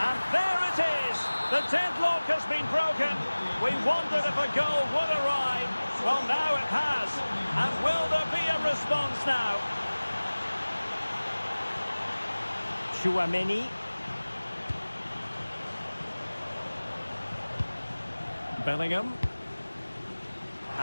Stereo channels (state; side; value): inverted; both; correlation -1.00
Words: And there it is. The deadlock has been broken. We wondered if a goal would arrive. Well, now it has. And will there be a response now? Tchouaméni. Bellingham.